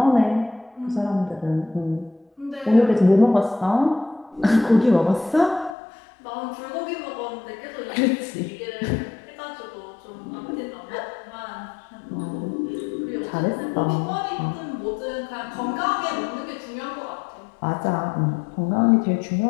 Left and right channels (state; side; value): drops out; right; at 5.8 s